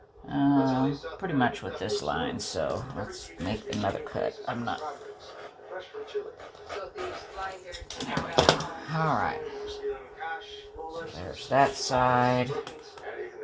pretty much with this line. So let's make another cut. I'm not. There we go. Alright. So there's that side.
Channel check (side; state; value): both; identical; correlation 1.00